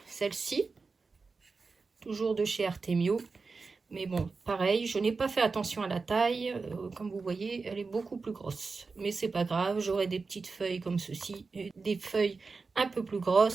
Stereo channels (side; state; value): left; quieter; 4.4 dB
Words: celle-ci. Toujours de chez Artemio. Mais bon, pareil, je n'ai pas fait attention à la taille. Comme vous voyez, elle est beaucoup plus grosse. Mais c'est pas grave, j'aurai des petites feuilles comme ceci. Et des feuilles un peu plus